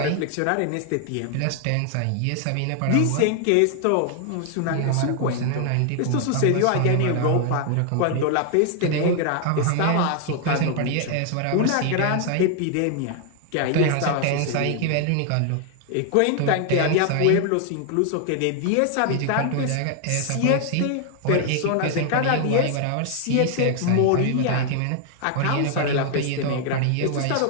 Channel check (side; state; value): both; different; correlation 0.00